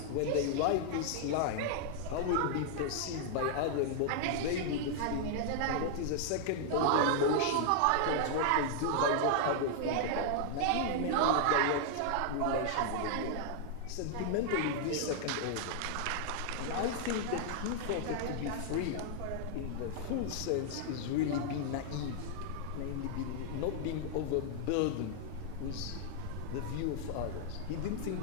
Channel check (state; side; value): different; both; correlation -0.01